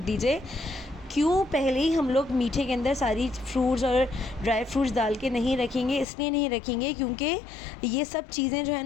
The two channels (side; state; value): right; drops out; at 6.1 s